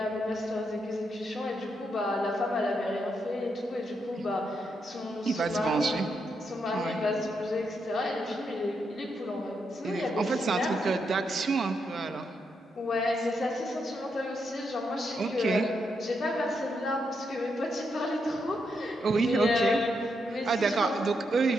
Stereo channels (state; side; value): normal; both; correlation 0.81